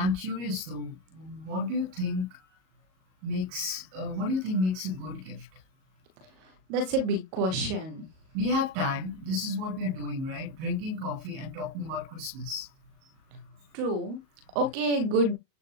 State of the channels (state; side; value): late; left; 38 ms